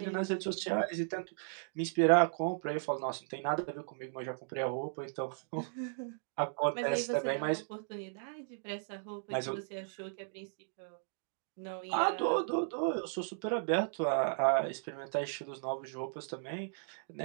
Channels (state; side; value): silent; left; digital silence